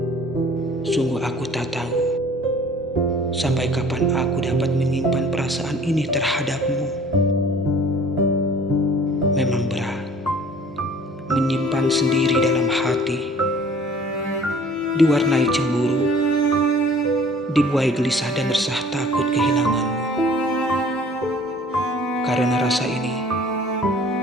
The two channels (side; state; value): both; normal; correlation 0.51